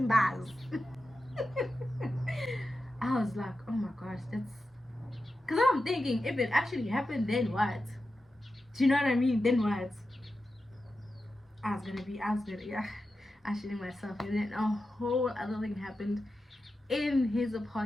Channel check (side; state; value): both; normal; correlation 0.91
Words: I was like, oh my gosh, that's. Because I'm thinking, if it actually happened, then what? Do you know what I mean? Then what? I was gonna, yeah, I shitting myself. And then a whole other thing happened in his